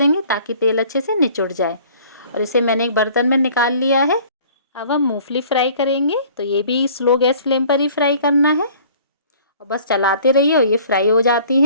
ताकि तेल अच्छे से निचुड़ जाए। और इसे मैंने एक बर्तन में निकाल लिया है। अब हम मूंगफली फ्राई करेंगे। तो ये भी स्लो गैस फ्लेम पर ही फ्राई करना है और बस चलाते रहिए और ये फ्राई हो जाती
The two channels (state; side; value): inverted; both; correlation -0.51